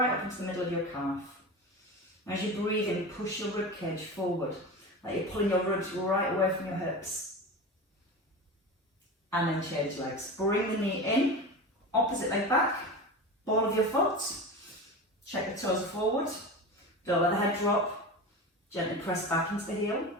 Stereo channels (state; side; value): normal; both; correlation 0.27